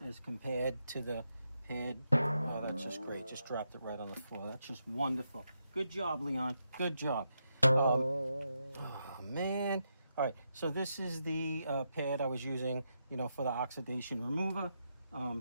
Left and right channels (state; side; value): inverted; both; correlation -0.83